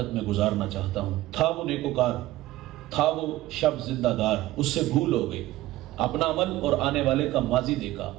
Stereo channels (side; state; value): left; quieter; 16.5 dB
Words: میں گزارنا چاہتا ہوں۔ تھا وہ نیکوکار، تھا وہ شب زندہ دار، اس سے بھول ہو گئی۔ اپنا عمل اور آنے والے کا ماضی دیکھا